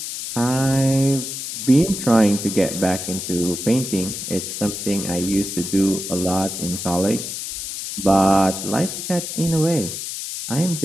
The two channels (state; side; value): noise; left; hiss, 6 dB below the sound